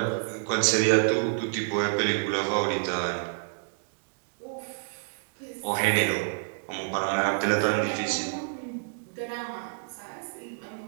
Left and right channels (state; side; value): silent; left; digital silence